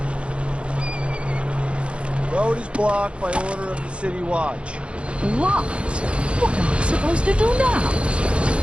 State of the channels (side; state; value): left; late; 0.060 ms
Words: Road is blocked by order of the City Watch. What? What am I supposed to do now?